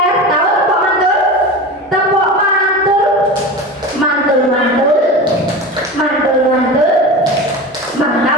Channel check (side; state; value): both; normal; correlation 0.28